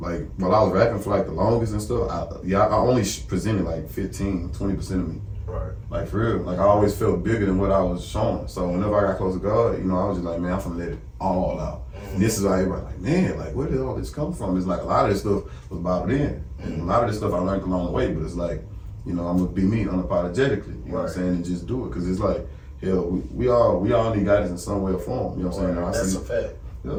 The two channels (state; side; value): identical; both; correlation 1.00